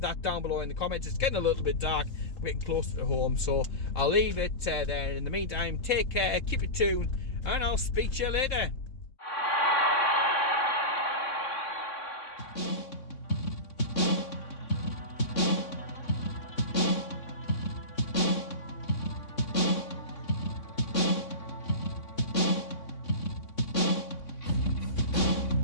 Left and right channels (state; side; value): late; right; 3.6 ms